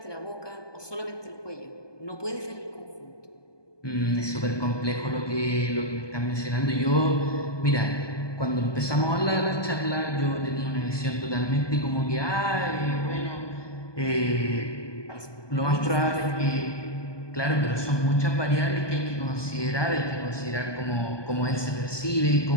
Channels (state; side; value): late; right; 1.2 ms